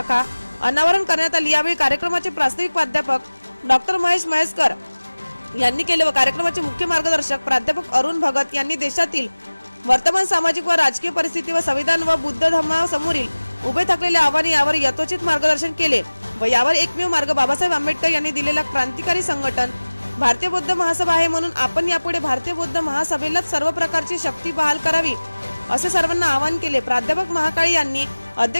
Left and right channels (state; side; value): inverted; both; correlation -1.00